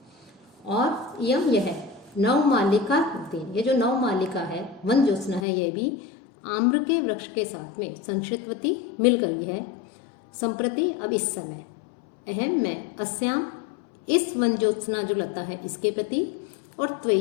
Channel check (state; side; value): drops out; right; at 5.5 s